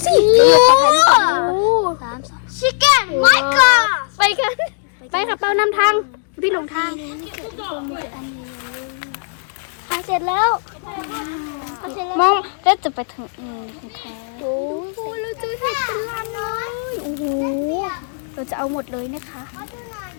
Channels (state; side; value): silent; right; digital silence